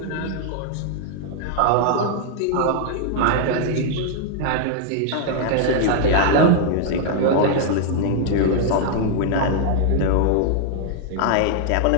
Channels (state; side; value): different; both; correlation 0.00